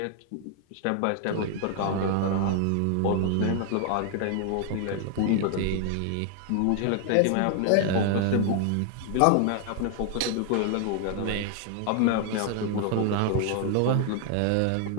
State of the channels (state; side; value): different; both; correlation 0.00